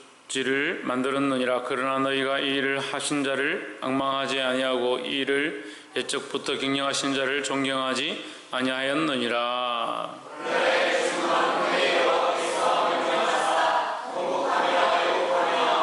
만들었느니라. 그러나 너희가 이 일을 하신 자를 앙망하지 아니하고 이 일을 옛적부터 경영하신 자를 존경하지 아니하였느니라.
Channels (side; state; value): both; identical; correlation 1.00